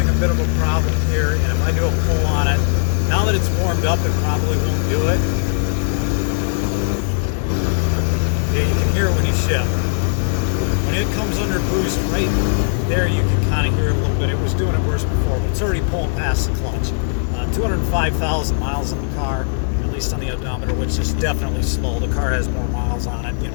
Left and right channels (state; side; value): silent; right; digital silence